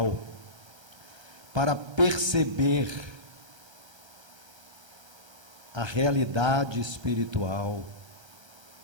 para perceber a realidade espiritual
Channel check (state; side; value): late; left; 1.3 ms